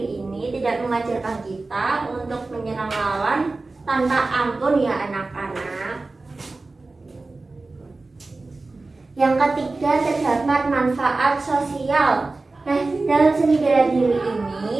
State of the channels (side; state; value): left; quieter; 3.4 dB